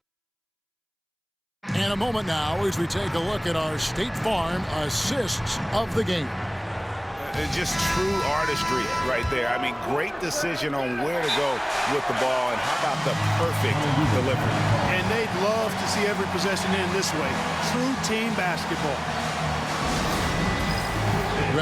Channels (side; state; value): both; identical; correlation 1.00